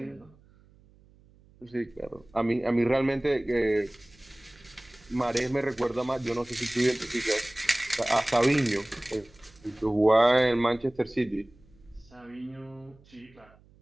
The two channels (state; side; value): noise; right; hum, 28 dB below the sound